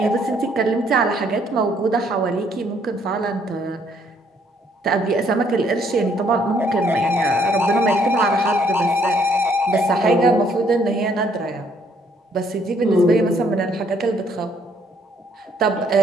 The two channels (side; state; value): both; normal; correlation 0.67